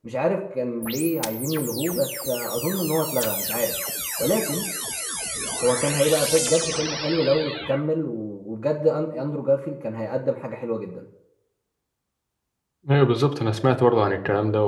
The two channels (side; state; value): both; identical; correlation 1.00